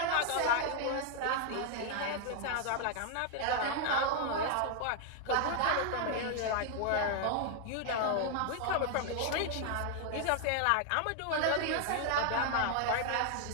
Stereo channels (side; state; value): both; different; correlation 0.00